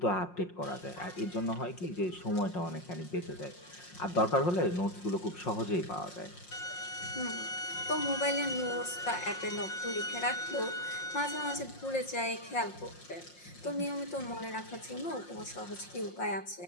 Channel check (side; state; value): right; late; 5.6 ms